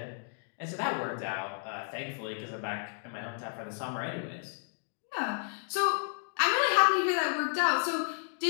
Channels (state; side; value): silent; right; 56 dB below the other